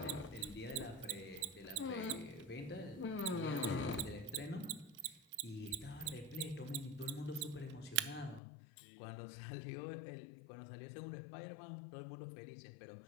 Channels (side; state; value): right; drops out; at 8.4 s